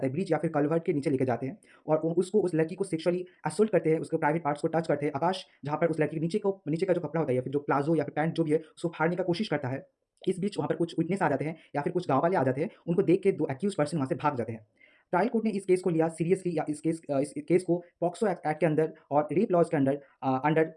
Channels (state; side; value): identical; both; correlation 1.00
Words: हैं, ब्रिज या फिर कलवर्ट के नीचे लेके जाते हैं, और उसको, उस लड़की को सेक्सुअली असोल्ट करते हैं, उसके प्राइवेट पार्ट्स को टच करते हैं। आकाश जहां पर उस लड़की के नीचे का जो कपड़ा होता है या फिर जो प्लाजो या फिर पैंट जो भी है, उसको फाड़ने का कोशिश करता है। इस बीच वहाँ पर कुछ विटनेस आ जाते हैं या फिर कुछ गाँव वाले आ जाते हैं, उनको देख के दो एक्यूज पर्सन वहाँ से भाग जाते हैं। ट्रायल कोर्ट ने इस केस को लिया सीरियसली, या इस केस को पॉक्सो एक्ट के अंदर और रेप लॉज के under under